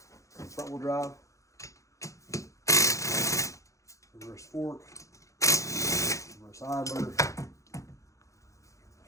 front wheel drive. Reverse fork, reverse idler.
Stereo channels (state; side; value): late; right; 0.15 ms